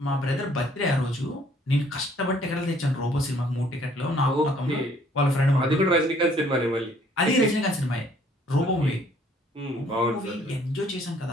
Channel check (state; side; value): normal; both; correlation 0.61